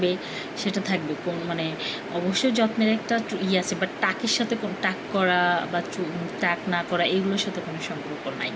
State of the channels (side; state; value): both; identical; correlation 1.00